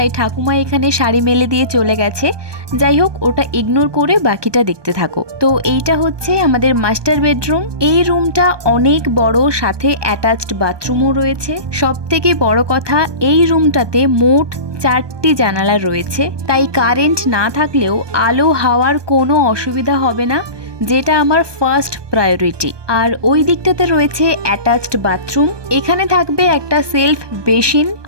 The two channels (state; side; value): late; left; 1.2 ms